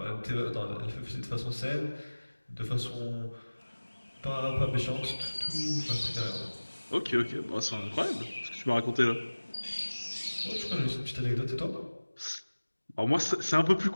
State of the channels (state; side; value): inverted; both; correlation -1.00